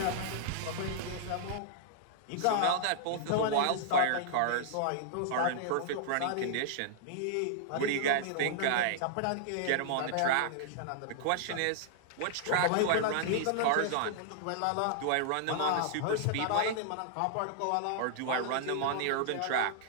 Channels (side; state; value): both; different; correlation -0.01